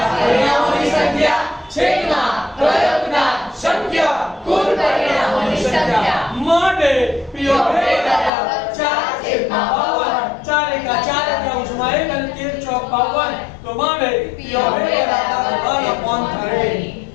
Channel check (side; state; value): right; drops out; at 8.3 s